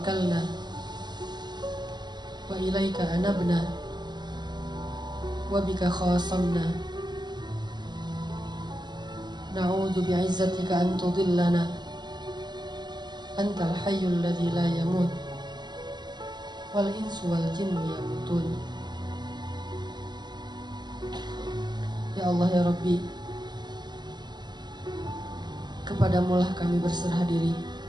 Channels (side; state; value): left; late; 0.21 ms